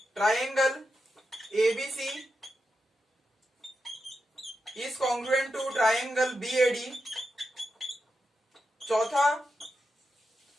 triangle ABC is congruent to triangle BAD, चौथा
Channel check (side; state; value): both; normal; correlation 0.87